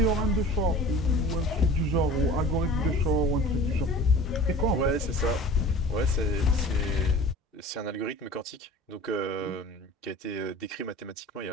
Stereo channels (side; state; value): both; normal; correlation 0.42